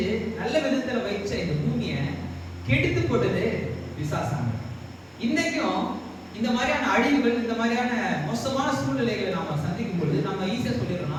நல்ல விதத்துல வைச்ச இந்த பூமியை கெடுத்து போட்டது பிசாசாங்க. இன்னைக்கும் இந்த மாதிரியான அழிவுகள், இந்த மாதிரியான மோசமான சூழ்நிலைகளை நாம சந்திக்கும் பொழுது நம்ம ஈஸியா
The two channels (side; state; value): both; identical; correlation 1.00